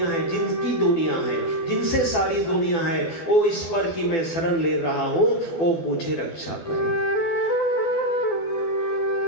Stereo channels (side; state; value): right; late; 12 ms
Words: है, जिनकी दुनिया है, जिनसे सारी दुनिया है, वो ईश्वर की मैं शरण ले रहा हूं, वो मुझे रक्षा करे।